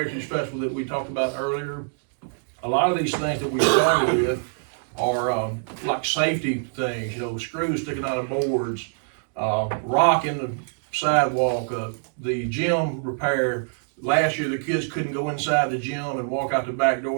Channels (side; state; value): left; silent; digital silence